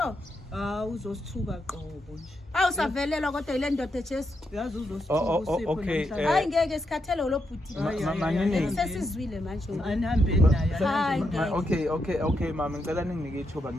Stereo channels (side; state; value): both; normal; correlation 0.82